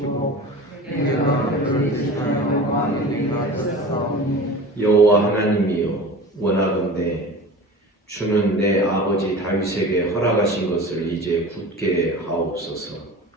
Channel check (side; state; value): both; normal; correlation 0.36